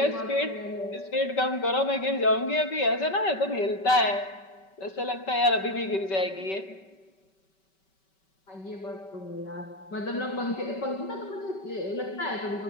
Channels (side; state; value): right; late; 5.2 ms